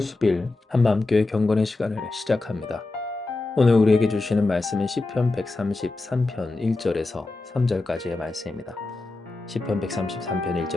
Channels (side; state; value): right; quieter; 3.2 dB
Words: 한마음교회 경건의 시간을 시작합니다. 오늘 우리에게 주시는 말씀은 시편 133편 1절에서 3절까지의 말씀입니다. 시편 133편